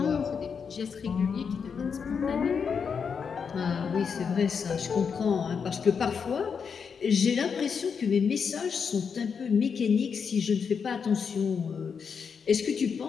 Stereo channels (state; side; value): quieter; right; 6.2 dB